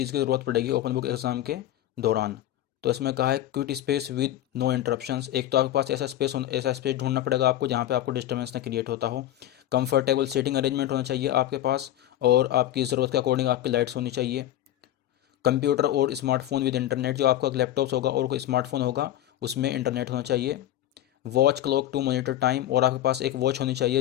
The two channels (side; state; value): right; quieter; 12.9 dB